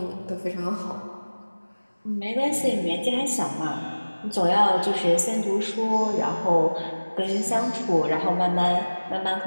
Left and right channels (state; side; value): inverted; both; correlation -1.00